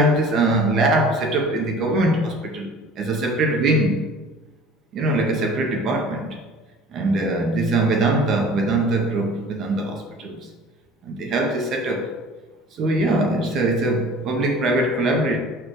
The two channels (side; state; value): both; normal; correlation 0.45